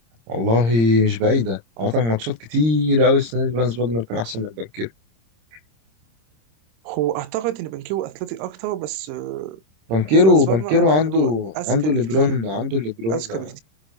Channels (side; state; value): left; late; 26 ms